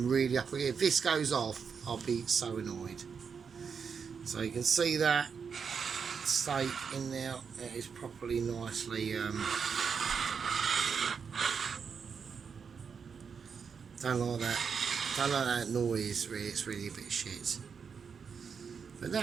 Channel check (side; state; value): left; quieter; 6.2 dB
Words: really up here. If this goes off, I'll be so annoyed. So you can see that steak in there. It is properly nicely don't like that. Don't like that noise. Really, it's really a bit shit. But